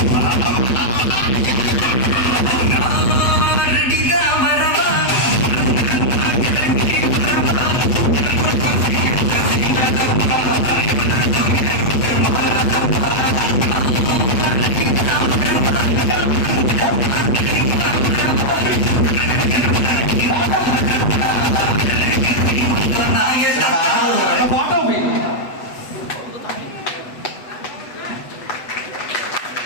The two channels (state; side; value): late; right; 8.1 ms